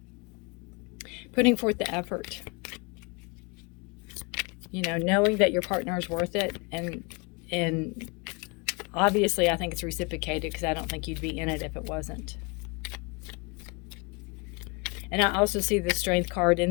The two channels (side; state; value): right; quieter; 30.0 dB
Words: Putting forth the effort. Knowing that your partner is worth it, and obviously I think it's reciprocated, because I don't think you'd be in it if it wasn't. And I also see the Strength card